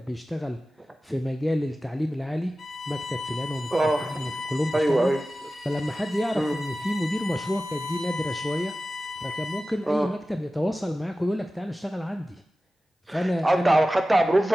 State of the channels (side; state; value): both; normal; correlation 0.95